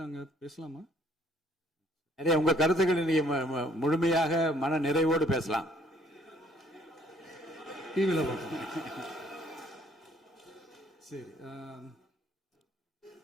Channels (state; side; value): normal; both; correlation 0.62